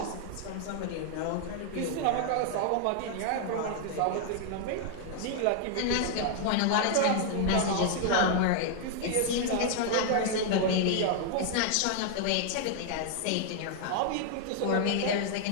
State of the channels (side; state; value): both; different; correlation 0.00